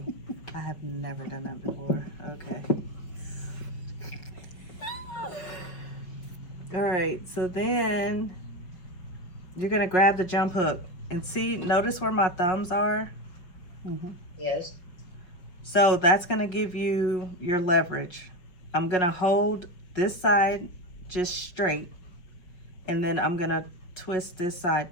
I have never done that before. Okay. All right, so then you're gonna grab the jump hook and see, notice where my thumbs are? Mm-hmm. Yes. So that's gonna give you your leverage. I'm gonna hold this side just straight, and then I'm gonna twist this side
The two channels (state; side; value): late; right; 5.1 ms